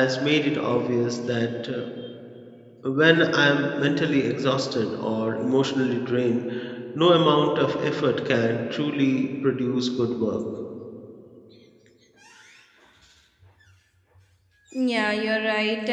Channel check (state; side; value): identical; both; correlation 1.00